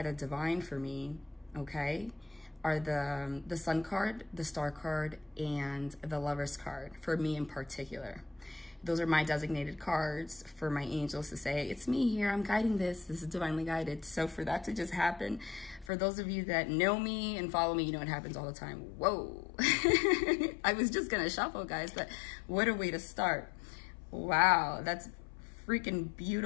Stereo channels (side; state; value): right; drops out; at 15.9 s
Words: the divine for me, okay, are the sun card, the star card, and the lover's card, for me in particular. Those are my designated cards for my angels to say, it's me here, I'm guiding this, this is divinely guided. So for that to just happen, for those of you that know me and follow me, you know it happens all the time. Whoa. I was just gonna shuffle, guys, but what a way to start. Wow, that's freaking